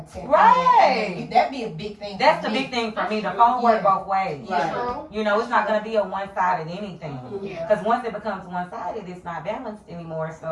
check in. Right. And that'd be a big thing. That's for the me. big thing for me. The phone work both ways. Right. True. You know, it's not gonna be a one-sided anything. Yeah. Because once it becomes one-sided, it's not balanced anymore.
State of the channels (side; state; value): both; identical; correlation 1.00